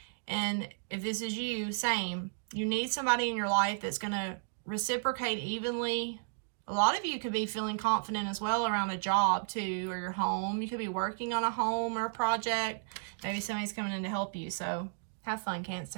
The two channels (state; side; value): silent; left; digital silence